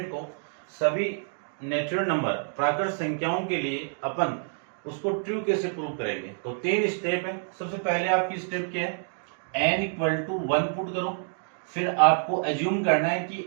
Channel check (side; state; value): left; silent; digital silence